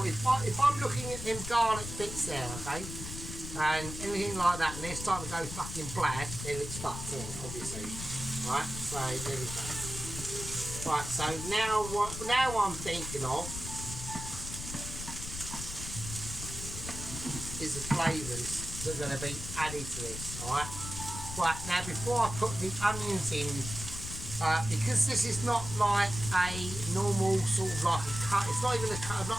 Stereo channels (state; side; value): noise; left; rumble, 8 dB below the sound